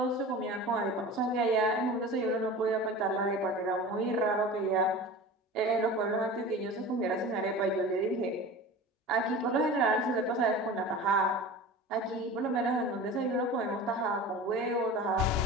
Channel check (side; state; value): both; normal; correlation 0.35